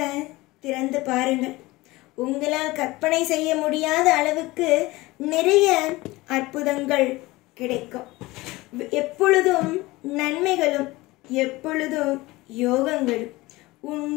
திறந்து பாருங்கள். உங்களால் கற்பனை செய்ய முடியாத அளவுக்கு நிறைய அற்புதங்கள் கிடைக்கும். எப்பொழுதும் நன்மைகளும், எப்பொழுதும் யோகங்களும் உன்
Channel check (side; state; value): right; quieter; 20.4 dB